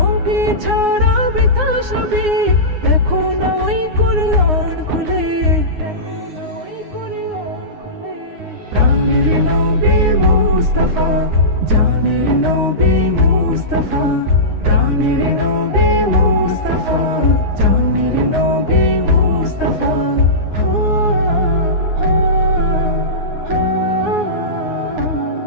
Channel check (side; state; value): left; late; 9.6 ms